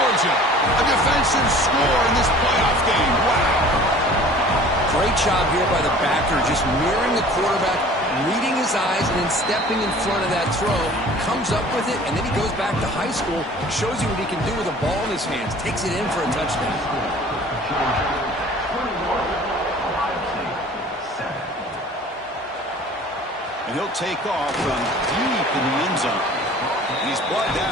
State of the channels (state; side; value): normal; both; correlation 0.47